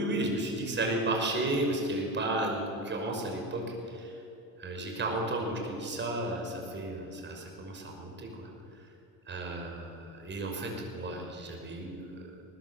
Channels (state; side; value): normal; both; correlation 0.20